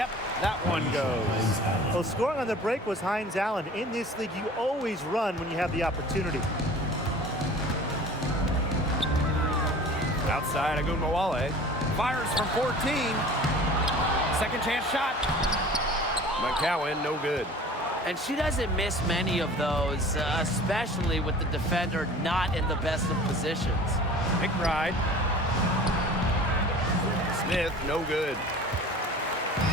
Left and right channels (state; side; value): normal; both; correlation 0.43